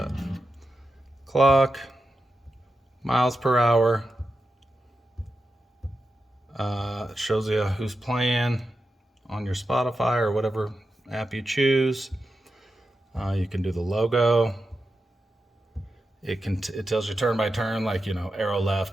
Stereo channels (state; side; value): normal; both; correlation 0.90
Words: Clock, miles per hour. It shows you who's playing on your Spotify or whatever app you choose. You can do the logo. It tells you turn by turn, like, you know, arrow